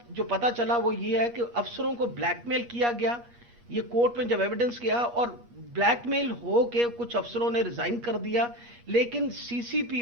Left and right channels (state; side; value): late; left; 8.4 ms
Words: جو پتا چلا وہ یہ ہے کہ افسروں کو بلیک میل کیا گیا. یہ کورٹ میں جب ایویڈنس کیا اور بلیک میل ہو کے کچھ افسروں نے ریزائن کر دیا، لیکن سی سی پی